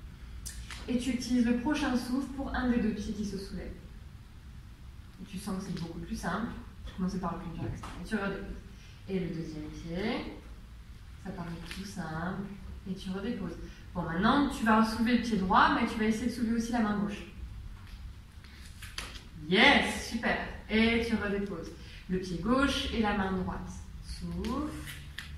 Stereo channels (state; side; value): identical; both; correlation 1.00